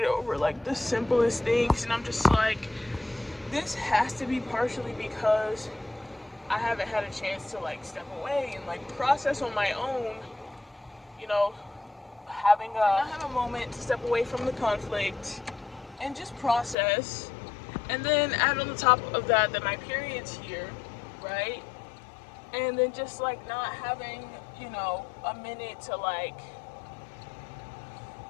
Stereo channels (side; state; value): right; drops out; at 16.8 s